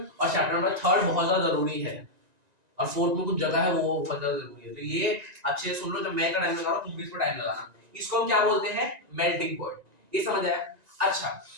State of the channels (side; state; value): left; late; 1.9 ms